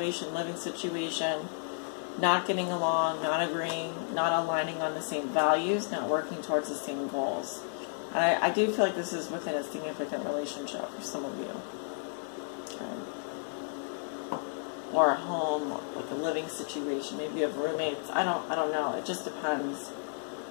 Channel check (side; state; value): right; silent; digital silence